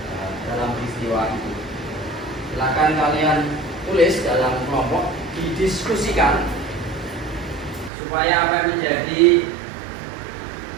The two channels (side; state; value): left; drops out; at 7.9 s